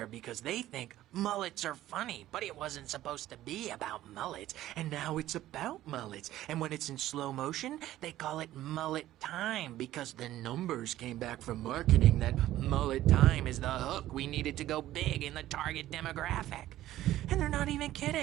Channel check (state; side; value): quieter; left; 14.2 dB